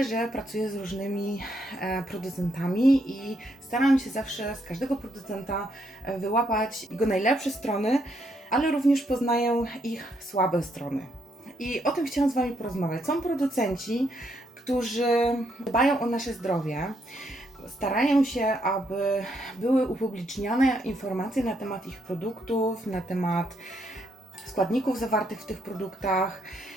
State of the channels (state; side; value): normal; both; correlation 0.75